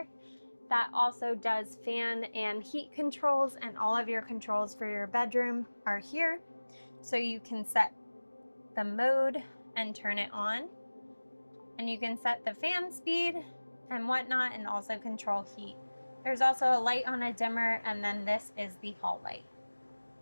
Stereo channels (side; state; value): both; inverted; correlation -1.00